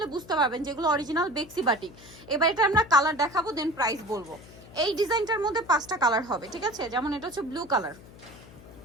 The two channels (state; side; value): noise; left; hum, 20 dB below the sound